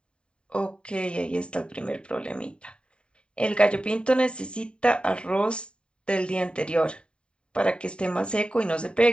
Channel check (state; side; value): late; right; 0.053 ms